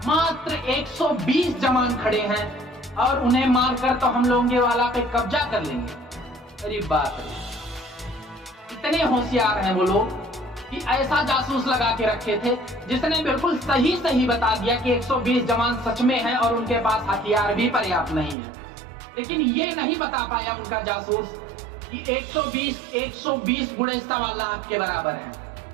मात्र 120 जवान खड़े हैं और उन्हें मारकर तो हम लोंगे वाला पे कब्जा कर लेंगे। अरे बात है, इतने होशियार हैं वो लोग कि ऐसा जासूस लगा के रखे थे जिसने बिल्कुल सही सही बता दिया कि 120 जवान सच में हैं और उनके पास हथियार भी पर्याप्त नहीं है। लेकिन ये नहीं बता पाया उनका जासूस कि 120 बुढ़े 1.25 लाख के बराबर हैं।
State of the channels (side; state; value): left; drops out; at 18.4 s